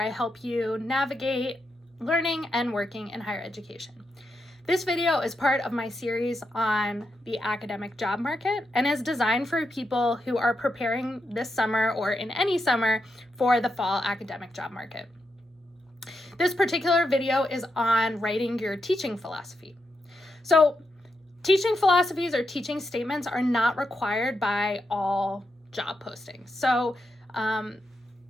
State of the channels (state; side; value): normal; both; correlation 0.84